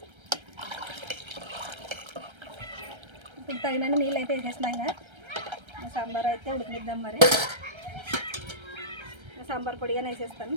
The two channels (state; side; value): late; left; 1.3 ms